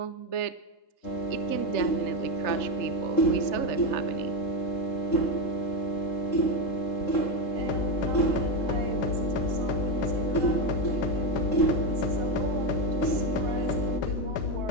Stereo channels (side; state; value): right; late; 3.4 ms